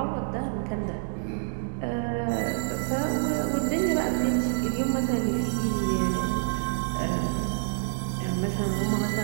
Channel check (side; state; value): left; silent; digital silence